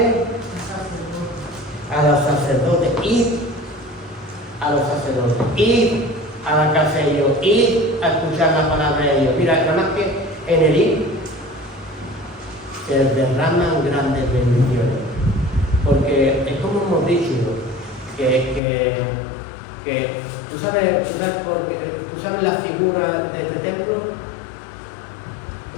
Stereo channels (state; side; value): drops out; right; at 18.6 s